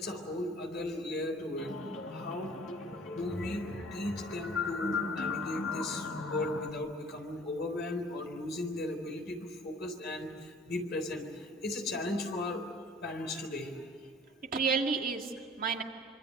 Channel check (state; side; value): normal; both; correlation 0.51